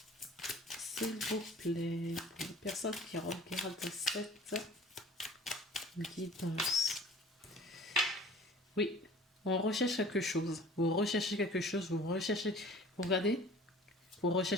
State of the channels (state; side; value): normal; both; correlation 0.47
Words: S'il vous plaît, pour les personnes qui regardent cette guidance. Oui, on recherche quelque chose. Vous recherchez quelque chose, vous regardez, vous